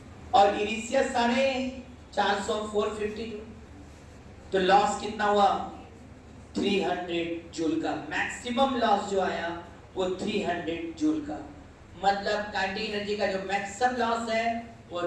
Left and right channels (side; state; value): both; identical; correlation 1.00